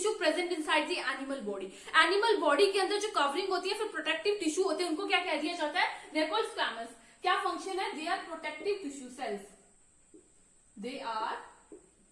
present inside the animal body. Animal body के अंदर जो कवरिंग होती है, फिर प्रोटेक्टिव टिश्यू होते हैं, उनको क्या कह दिया जाता है? They are called squamous. क्या फंक्शन है? They are protective tissue cells, they are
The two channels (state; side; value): identical; both; correlation 1.00